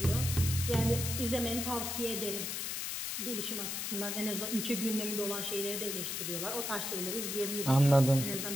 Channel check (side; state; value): left; noise; hiss, 3 dB below the sound